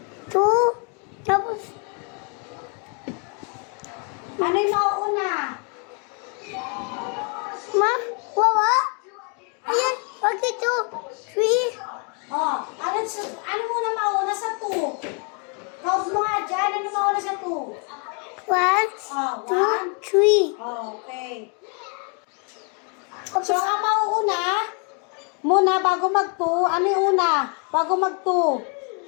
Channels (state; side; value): quieter; right; 37.4 dB